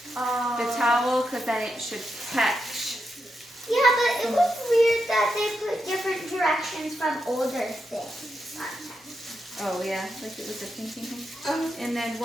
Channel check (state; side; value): normal; both; correlation 0.85